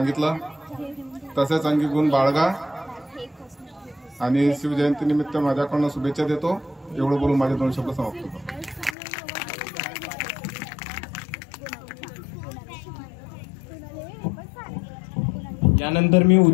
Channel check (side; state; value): right; drops out; at 9.0 s